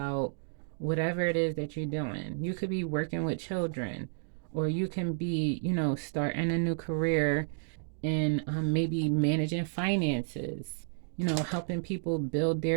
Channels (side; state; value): left; silent; digital silence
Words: whatever it is that you're doing, you could be working with children, or you can be, starting a new career in maybe managing finances, helping people build